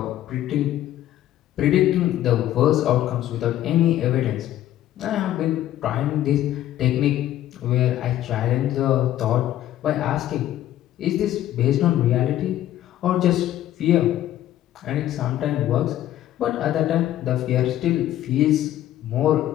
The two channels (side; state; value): right; quieter; 12.9 dB